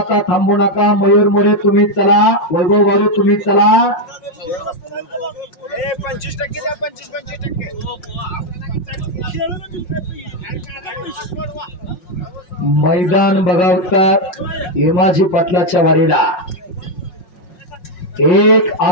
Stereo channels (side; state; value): right; late; 5.5 ms